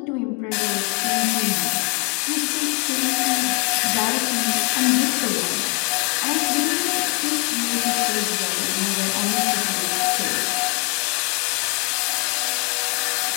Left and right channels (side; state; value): right; quieter; 29.8 dB